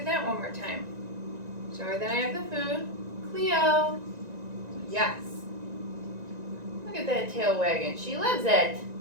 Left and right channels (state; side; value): late; left; 1.9 ms